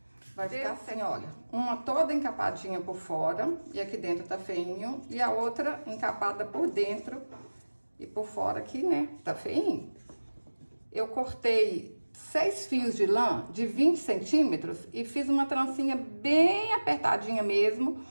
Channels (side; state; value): both; inverted; correlation -1.00